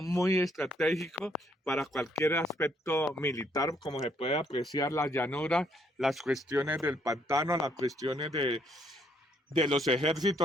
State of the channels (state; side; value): normal; both; correlation 0.69